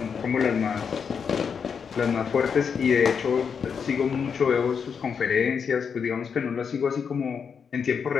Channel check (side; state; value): right; quieter; 6.5 dB